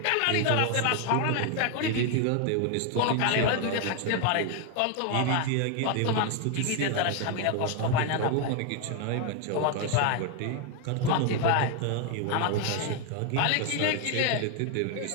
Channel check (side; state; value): both; different; correlation 0.01